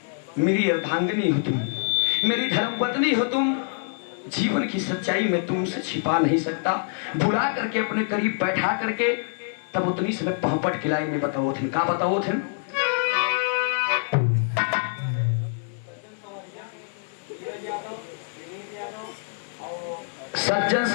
मेरी अर्धांगिनी हो तुम, मेरी धर्मपत्नी हो तुम, जीवन की सच्चाई में तुमसे छिपा नहीं सकता। बुला करके अपने करीब बैठा करके तब उतनी समय पहपट खिलाई में बताओ थे, का बताओ थे? सज्जन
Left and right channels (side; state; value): right; silent; digital silence